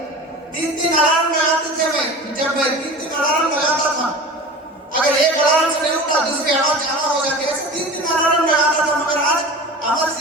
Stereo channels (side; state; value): both; normal; correlation 0.34